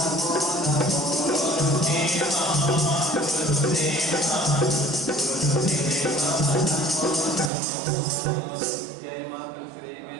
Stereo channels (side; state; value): left; drops out; at 7.5 s